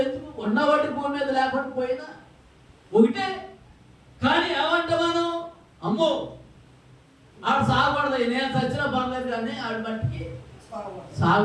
ఎందుకు ఉన్నవాటి భూమి మీద లేకుండా పోయినా ఒకటే. కానీ ఏమంటే మనం అమ్మో ఆడు సాగకూడదు, నేను చచ్చిన పర్లేదు కానీ ఆడి మట్టికి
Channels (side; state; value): both; identical; correlation 1.00